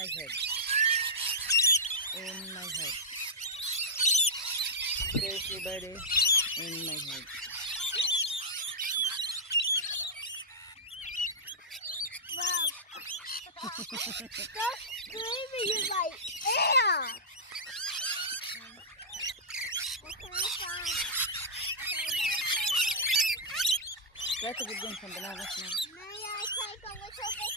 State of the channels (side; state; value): both; normal; correlation -0.12